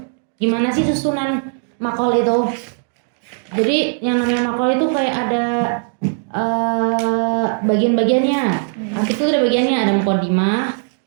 Gimana sih susunan maqal itu? Jadi yang namanya maqal itu kayak ada bagian-bagiannya. Arti itu ada bagiannya, ada muqaddimah,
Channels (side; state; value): left; silent; 58 dB below the other